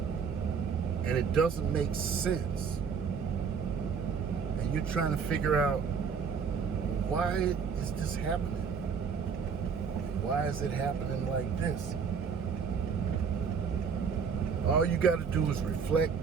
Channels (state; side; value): quieter; left; 6.2 dB